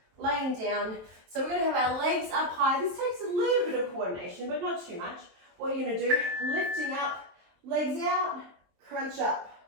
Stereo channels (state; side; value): late; left; 23 ms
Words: Laying down. So we're going to have our legs up high. This takes a little bit of coordination, but not too much. What you're going to do, lifting up, legs out, crunch up,